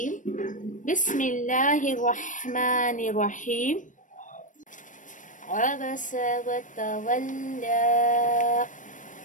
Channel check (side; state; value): right; late; 0.37 ms